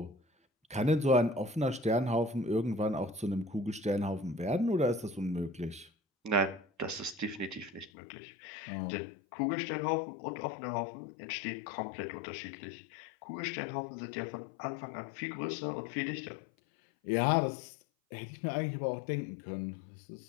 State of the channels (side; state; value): right; drops out; at 7.9 s